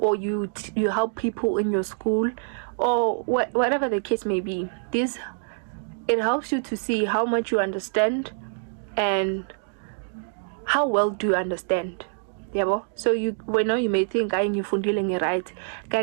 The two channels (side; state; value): left; silent; digital silence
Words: you help people in your school, or whatever the case may be, it helps you to see how much you understand and how well do you understand. So you may think ngifundile right,